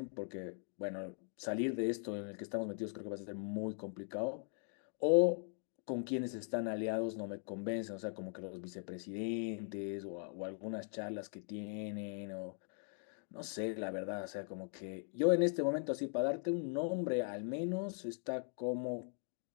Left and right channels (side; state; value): right; silent; 51 dB below the other